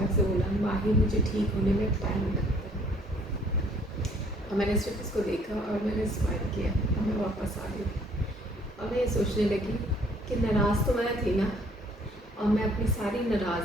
से बोला, माही मुझे ठीक होने में टाइम लगता है। और मैंने सिर्फ उसको देखा और मैंने स्माइल किया और मैं वापस आ गई। और मैं ये सोचने लगी कि नाराज़ तो मैं थी ना, और मैं अपनी सारी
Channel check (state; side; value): normal; both; correlation 0.60